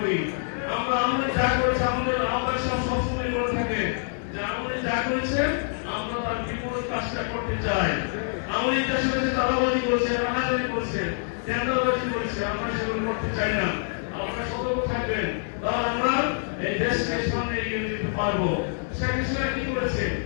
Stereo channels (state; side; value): silent; right; 61 dB below the other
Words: আমরা যা করেছে আমাদের আহ্বায়ক সবসময় বলে থাকে যে আমাদের যা করেছে আমরা তার বিপরীত কাজটা করতে চাই। আমাদের দেশের কাছে চাঁদাবাজি করেছে, রানাবাজি করেছে, টেন্ডারবাজি করেছে, আমরা সেগুলো করতে চাই না। আপনারা সতর্ক থাকবেন, তাহলে আমরা এই দেশকে সামনে এগিয়ে যেতে পারবো। শেখ হাসিনা কি করেছে?